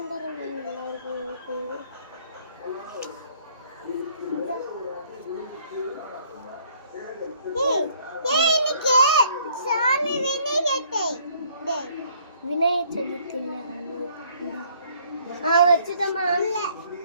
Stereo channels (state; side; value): inverted; both; correlation -0.61